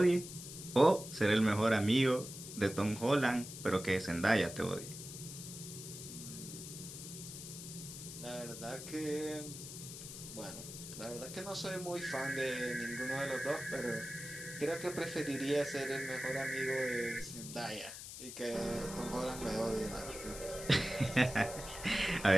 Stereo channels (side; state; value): left; noise; hiss, 10 dB below the sound